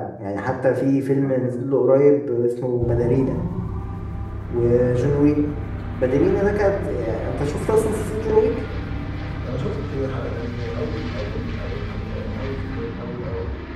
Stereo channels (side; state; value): both; identical; correlation 1.00